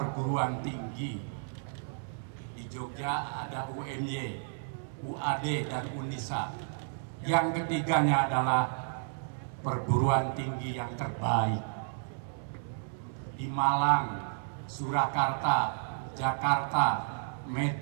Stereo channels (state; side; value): silent; left; digital silence